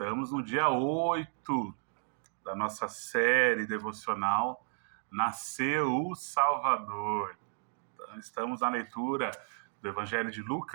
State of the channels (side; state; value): left; silent; 56 dB below the other